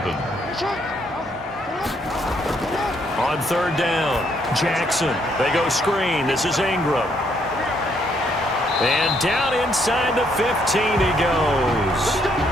On 3rd down, Jackson. They go screen. This is Ingram. And down inside the 15 he goes.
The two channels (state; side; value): normal; both; correlation 0.71